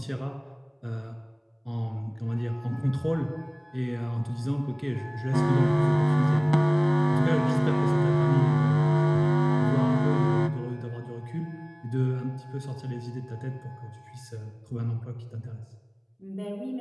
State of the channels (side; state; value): both; identical; correlation 1.00